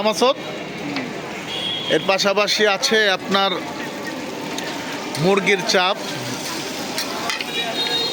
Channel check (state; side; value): identical; both; correlation 1.00